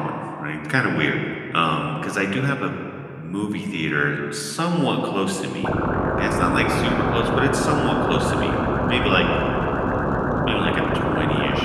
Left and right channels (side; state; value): both; identical; correlation 1.00